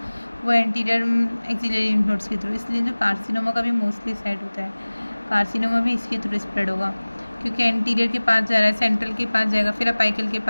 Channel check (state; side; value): inverted; both; correlation -1.00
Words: वो एंटीरियर एक्सिलरी लिम्फ नोड्स के थ्रू, इसलिए जो कार्सिनोमा का भी मोस्टली साइड होता है, कार्सिनोमा भी इसके थ्रू स्प्रेड होगा क्योंकि एंटीरियर के पास जा रहा है, सेंट्रल के पास जाएगा, फिर अपाइकल के